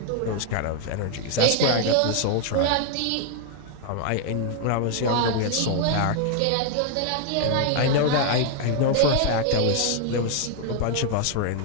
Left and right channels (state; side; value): different; both; correlation 0.00